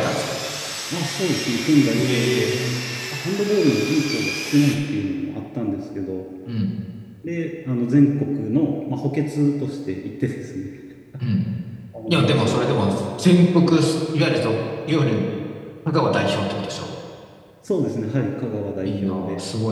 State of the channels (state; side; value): identical; both; correlation 1.00